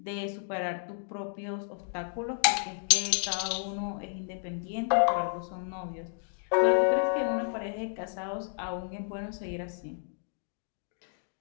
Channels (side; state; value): right; silent; digital silence